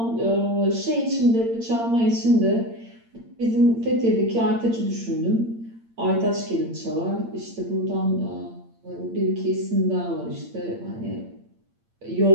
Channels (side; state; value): left; late; 8.8 ms